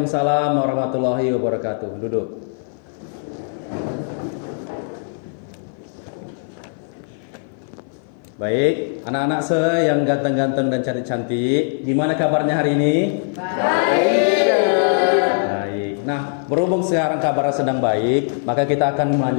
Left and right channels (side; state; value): right; silent; 56 dB below the other